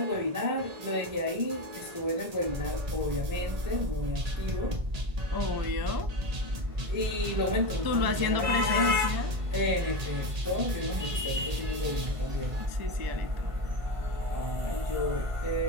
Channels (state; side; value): late; left; 1.8 ms